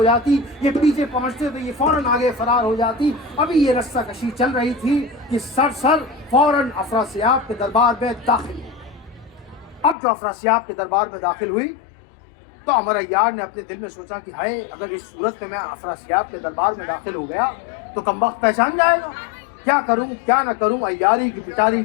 جاتی، یہ پیچھے پہنچتے تو یہ فوراً آگے فرار ہو جاتی۔ ابھی یہ رسہ کشی چل رہی تھی کہ سرسر فوراً افراسیاب کے دربار میں داخل ہوئی۔ اب جو افراسیاب کے دربار میں داخل ہوئی تو عمر عیار نے اپنے دل میں سوچا کہ ہائے، اگر اس صورت میں افراسیاب کے دربار میں داخل ہو گیا تو کمبخت پہچان جائے گا، کیا کروں کیا نہ کروں۔ عیاری کی پٹاری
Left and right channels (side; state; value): right; drops out; at 10.0 s